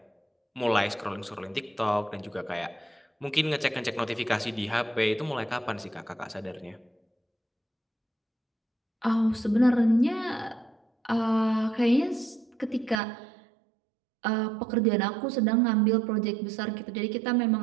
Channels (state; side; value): drops out; left; at 13.0 s